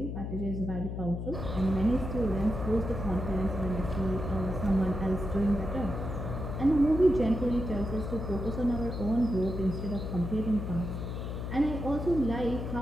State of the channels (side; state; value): left; noise; hum, 5 dB below the sound